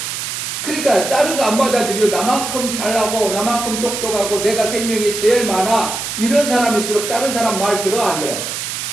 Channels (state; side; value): noise; right; hiss, 5 dB below the sound